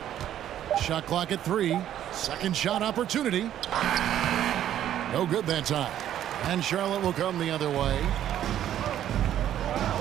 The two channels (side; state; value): left; quieter; 11.3 dB